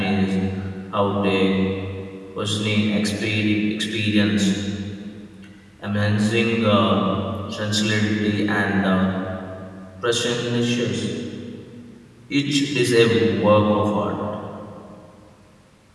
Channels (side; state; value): both; identical; correlation 1.00